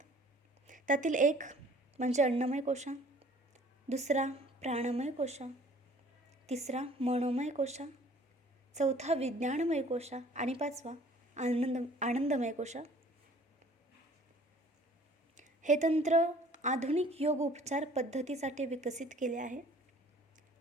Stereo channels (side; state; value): both; normal; correlation 0.54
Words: त्यातील एक म्हणजे अन्नमय कोशा, दुसरा प्राणमय कोशा, तिसरा मनोमय कोशा, चौथा विज्ञानमय कोशा आणि पाचवा आनंदमय कोशा. हे तंत्र आधुनिक योग उपचार पद्धतीसाठी विकसित केले आहे.